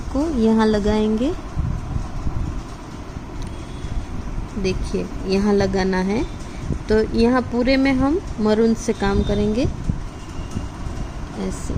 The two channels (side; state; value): both; identical; correlation 1.00